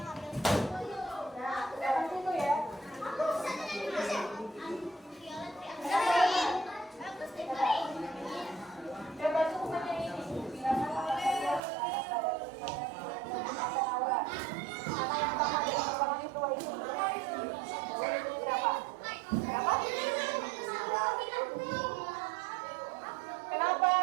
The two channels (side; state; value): left; drops out; at 11.6 s